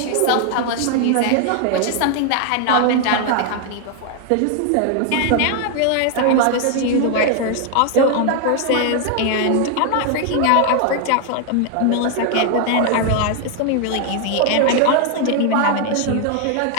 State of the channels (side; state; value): both; different; correlation 0.00